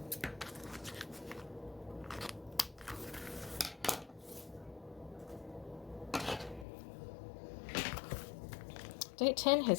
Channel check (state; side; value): drops out; right; at 6.7 s